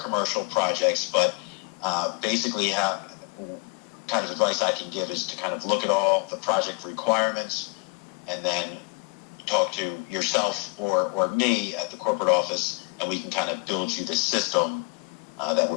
projects, but basically kind of advice I can give is to kind of look at all the project requirements and then talk to yourself or me at the corporate office, and we can kind of build you the system that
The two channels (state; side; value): quieter; right; 31.3 dB